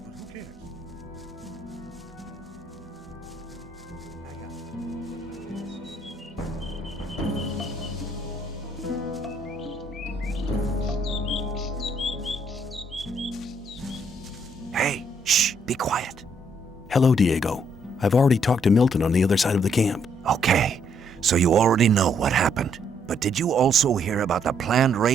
but who cares? Hey, shh, be quiet. Hello, Diego. I've already talked to Milton on the other side of the camp. Okay, so you already know what happened. But did you also hear about the planned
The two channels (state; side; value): normal; both; correlation 0.70